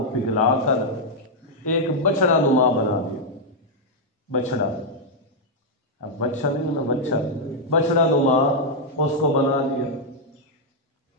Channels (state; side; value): normal; both; correlation -0.03